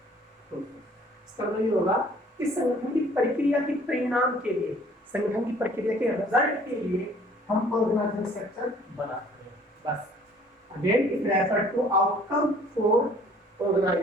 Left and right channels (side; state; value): both; normal; correlation 0.55